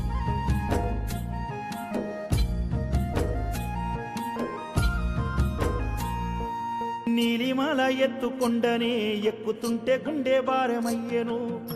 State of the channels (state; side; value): identical; both; correlation 1.00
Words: నీలిమాల ఎత్తుకొండనే ఎక్కుతుంటే గుండె భారమయ్యెను